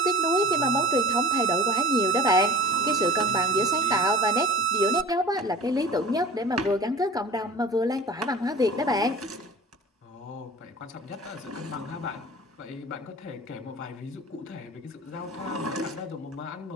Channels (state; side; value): normal; both; correlation 0.41